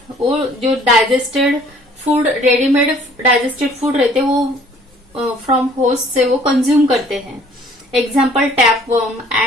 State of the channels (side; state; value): both; normal; correlation 0.56